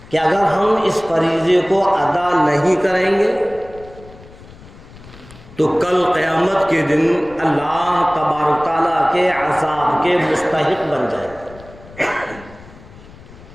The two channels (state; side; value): noise; left; rumble, 20 dB below the sound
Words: کہ اگر ہم اس فریضے کو ادا نہیں کریں گے تو کل قیامت کے دن اللہ تبارک تعالیٰ کے عذاب کے مستحق بن جائیں.